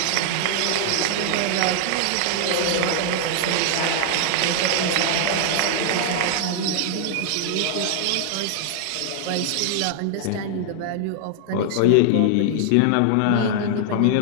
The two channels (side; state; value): both; different; correlation 0.00